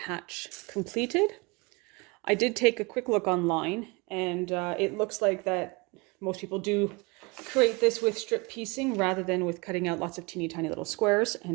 completed. I did take a quick look online, and it looks like that most people do create this with strip piecing rather than with cutting out lots of teeny tiny little squares,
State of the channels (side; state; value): left; quieter; 27.2 dB